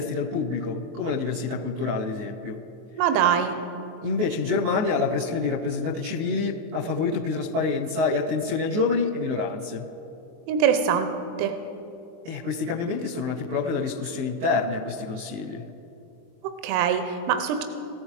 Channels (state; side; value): late; left; 23 ms